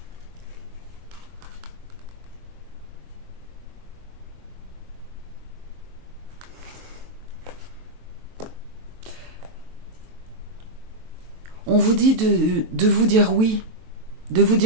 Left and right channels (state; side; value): late; left; 23 ms